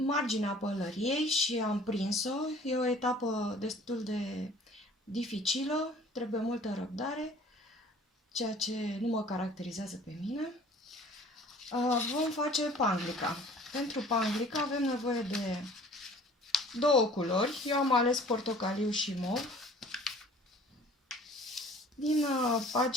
pălăriei și am prins-o, e o etapă destul de dificilă, trebuie multă răbdare, ceea ce nu mă caracterizează pe mine. Vom face panglica. Pentru panglica avem nevoie de două culori. Eu am ales portocaliu și mov. Din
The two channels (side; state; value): both; normal; correlation 0.50